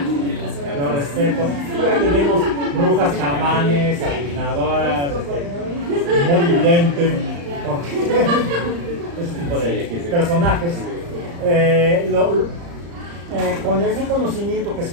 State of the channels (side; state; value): left; late; 35 ms